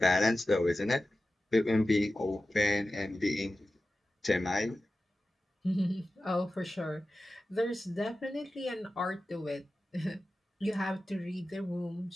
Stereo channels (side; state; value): both; normal; correlation 0.94